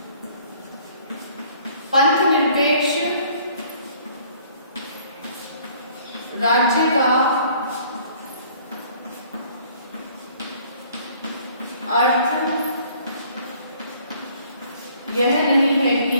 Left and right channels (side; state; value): both; inverted; correlation -0.57